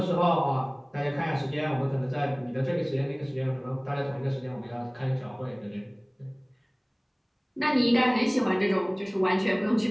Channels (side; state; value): both; identical; correlation 1.00